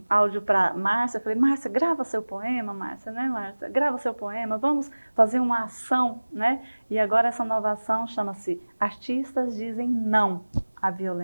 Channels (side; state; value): both; inverted; correlation -1.00